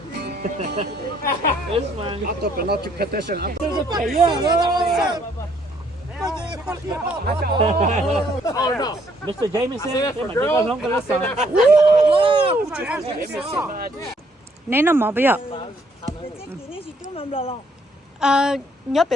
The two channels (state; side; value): normal; both; correlation 0.67